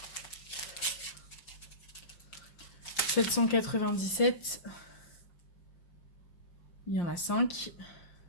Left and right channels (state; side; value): late; right; 5.7 ms